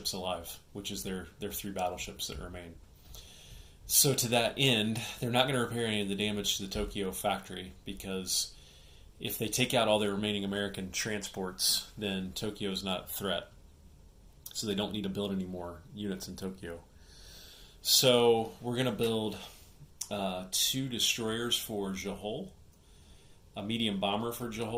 alive, which is their three battleships that remain. So to that end, they're not going to repair any of the damage to the Tokyo factory, because if they take out all their remaining American transports, then Tokyo is not a threat. So they don't need to build any more units in Tokyo. So we're going to build 2 destroyers for Johor, a medium bomber for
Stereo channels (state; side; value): identical; both; correlation 1.00